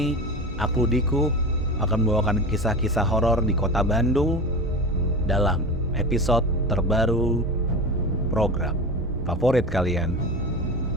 aku Diku akan membawakan kisah-kisah horor di kota Bandung dalam episode terbaru program favorit kalian.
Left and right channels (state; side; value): normal; both; correlation 0.28